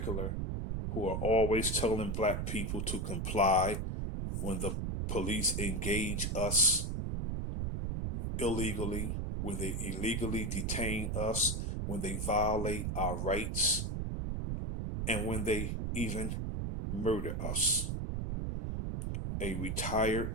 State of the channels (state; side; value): noise; right; rumble, 1 dB below the sound